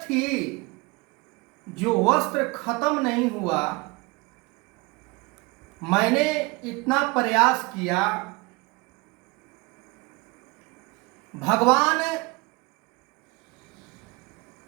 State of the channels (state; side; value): quieter; left; 25.4 dB